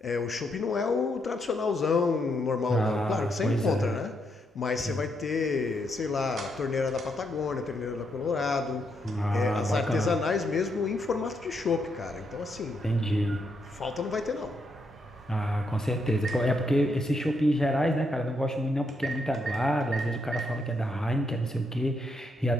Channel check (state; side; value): normal; both; correlation 0.78